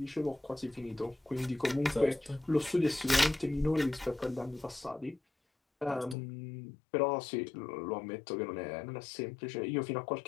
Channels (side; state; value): right; drops out; at 6.2 s